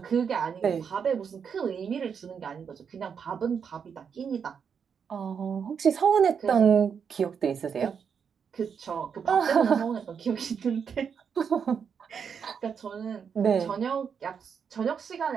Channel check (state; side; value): quieter; left; 6.8 dB